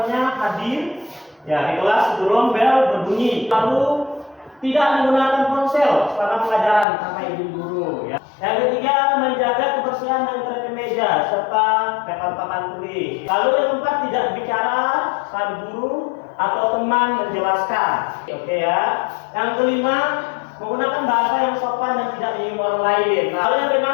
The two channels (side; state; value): right; drops out; at 6.9 s